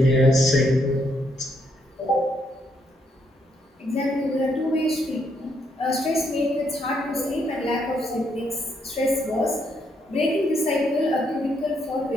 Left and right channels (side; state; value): both; normal; correlation 0.75